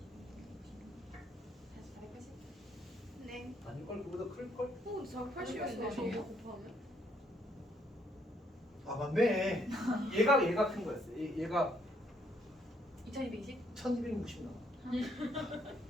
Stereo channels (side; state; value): both; normal; correlation 0.71